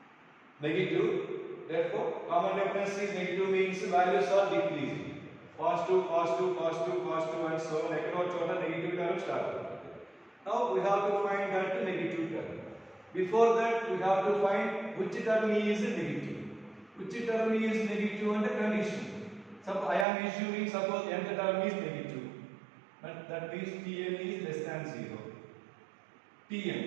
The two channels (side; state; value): left; drops out; at 20.1 s